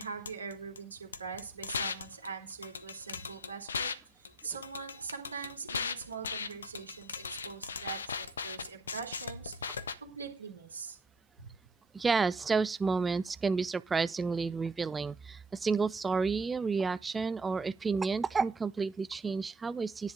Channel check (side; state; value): left; quieter; 3.2 dB